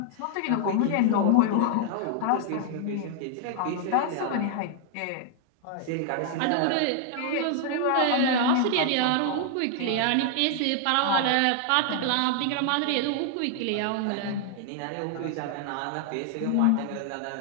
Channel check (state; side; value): different; both; correlation 0.00